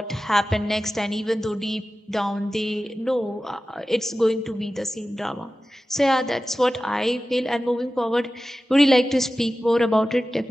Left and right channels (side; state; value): both; normal; correlation 0.95